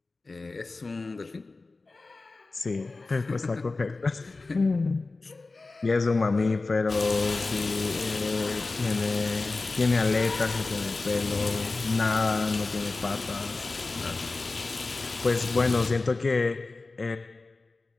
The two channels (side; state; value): right; quieter; 3.6 dB